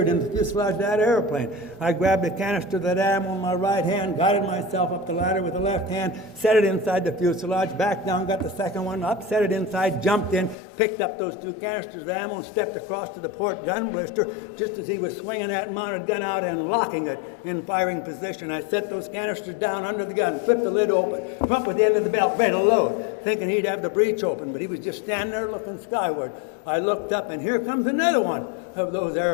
into the fuselage of that airplane. I grabbed a canister of that ammo in my right hand, guided myself up the ladder with the left hand, set it inside the fuselage, back down, got the second one up, set it inside, jumped in, picked up those 2 canisters of ammo and stepped across to the port gun blister just as he was swinging that mounted gun out and locking it in firing position. I set those canisters down under the gun, flipped the lid open, come up with the end of the belt, ready to load, thinking he'd have the breech open, but he was just standing there looking skyward. I looked up, and here comes another one of those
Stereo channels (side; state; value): right; drops out; at 10.6 s